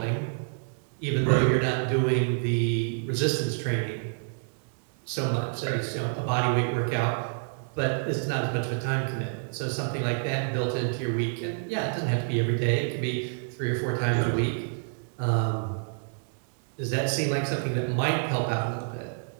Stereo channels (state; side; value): silent; left; digital silence